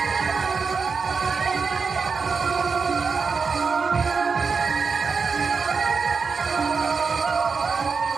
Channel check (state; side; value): quieter; left; 5.1 dB